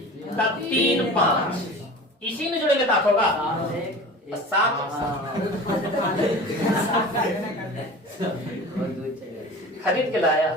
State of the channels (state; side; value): normal; both; correlation 0.37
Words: तब 3 5, इसी में जोड़ेंगे तो 8 होगा 7। खरीद के लाया,